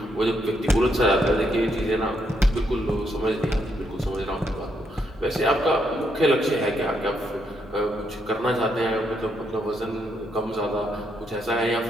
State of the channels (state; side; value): normal; both; correlation 0.77